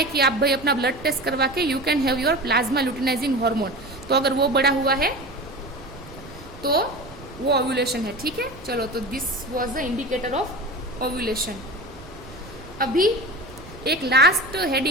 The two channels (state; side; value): noise; right; rumble, 18 dB below the sound